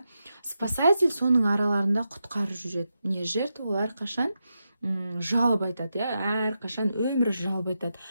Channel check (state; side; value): inverted; both; correlation -0.87